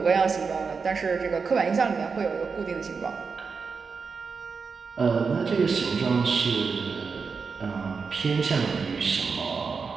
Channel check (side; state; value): left; quieter; 5.2 dB